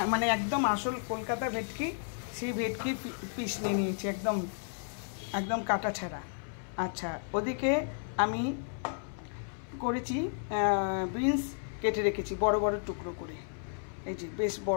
মানে একদম আসল কলকাতা ভেটকি, সেই ভেটকি পিস নিয়ে নিয়েছি, একদম একদম কাটা ছাড়া। আচ্ছা, ওদিকে আমি করেছি বিনস কেটে রেখেছি বড় বড় টুকরো করে, এই যে বেশ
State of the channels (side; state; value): right; silent; 56 dB below the other